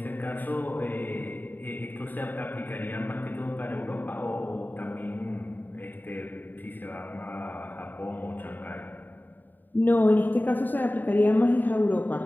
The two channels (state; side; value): late; right; 0.090 ms